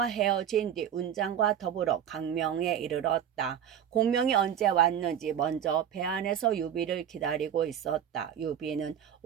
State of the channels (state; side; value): quieter; left; 9.2 dB